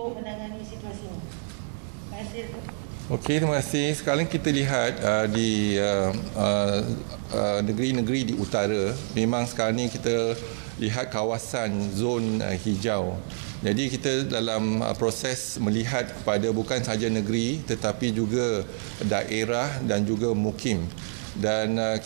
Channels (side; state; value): left; silent; digital silence